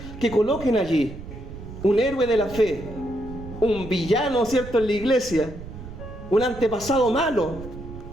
que coloquen allí? Un héroe de la fe, un villano, ¿cierto?, en la iglesia, un antepasado malo,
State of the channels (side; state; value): right; noise; rumble, 13 dB below the sound